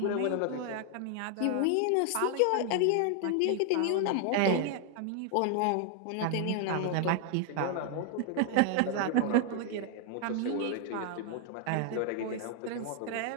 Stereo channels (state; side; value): different; both; correlation 0.00